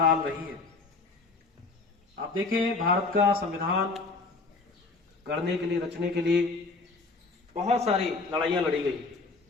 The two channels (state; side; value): quieter; right; 3.8 dB